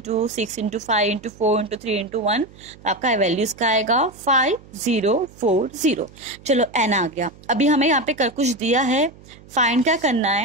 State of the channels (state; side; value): noise; right; hum, 23 dB below the sound